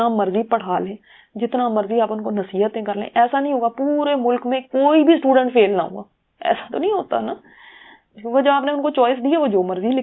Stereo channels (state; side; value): identical; both; correlation 1.00